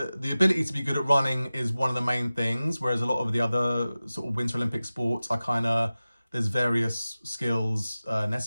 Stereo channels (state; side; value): inverted; both; correlation -0.96